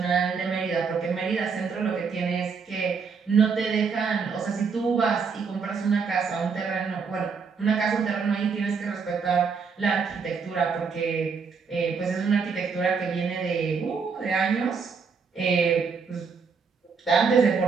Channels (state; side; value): quieter; left; 5.5 dB